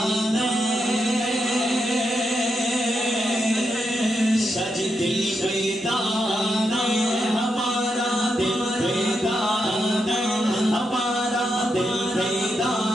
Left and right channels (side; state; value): both; normal; correlation 0.83